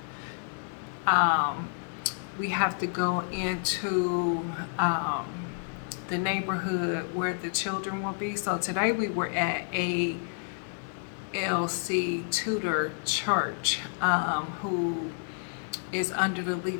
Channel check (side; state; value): right; silent; 58 dB below the other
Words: Um, we have to go into the neighborhood where the children will be. So today we were at a LC Tudor Church, who is under the